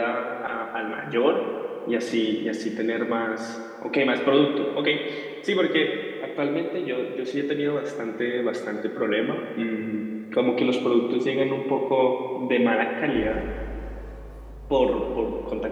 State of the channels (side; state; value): both; identical; correlation 1.00